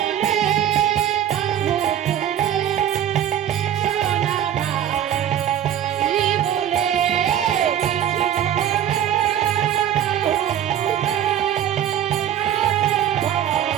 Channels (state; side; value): quieter; left; 10.4 dB